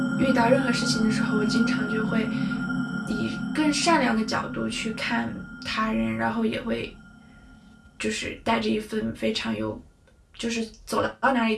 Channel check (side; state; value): both; identical; correlation 1.00